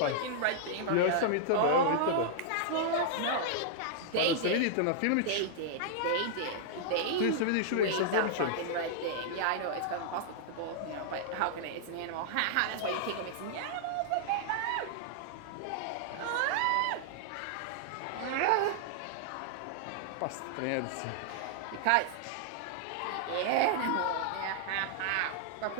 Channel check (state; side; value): different; both; correlation -0.01